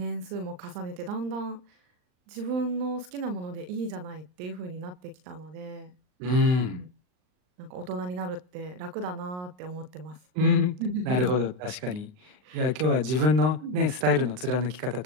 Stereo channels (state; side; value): late; left; 39 ms